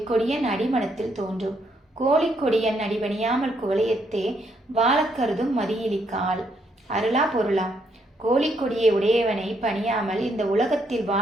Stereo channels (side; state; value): both; normal; correlation 0.74